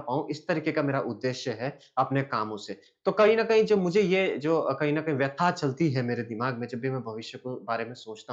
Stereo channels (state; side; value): identical; both; correlation 1.00